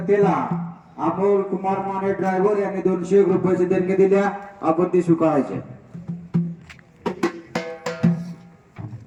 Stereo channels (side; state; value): both; identical; correlation 1.00